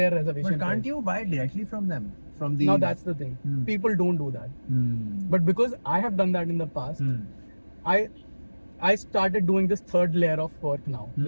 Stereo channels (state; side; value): inverted; both; correlation -1.00